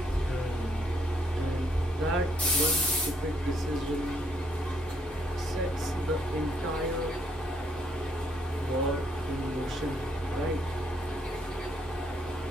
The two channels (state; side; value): normal; both; correlation 0.72